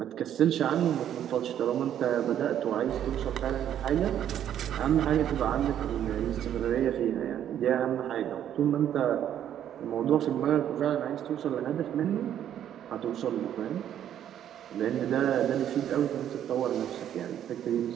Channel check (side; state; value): left; quieter; 10.4 dB